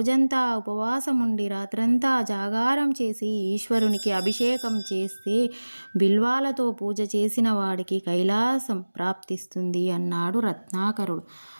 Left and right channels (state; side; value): inverted; both; correlation -1.00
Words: ఉపవాసం ఉండి రాత్రంతా జాగారం చేసి ఈశ్వరునికి అభిషేకం చేస్తే బిల్వాలతో పూజ చేసిన వాడికి కైలాసం ప్రాప్తిస్తుంది అన్నాడు రత్నాకరుడు.